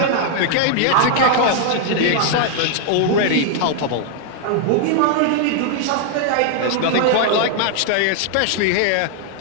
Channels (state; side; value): different; both; correlation 0.00